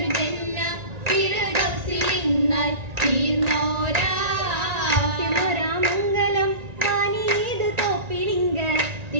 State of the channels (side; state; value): left; late; 1.9 ms